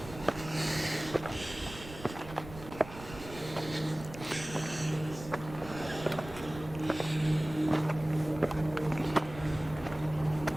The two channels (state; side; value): noise; right; rumble, 14 dB below the sound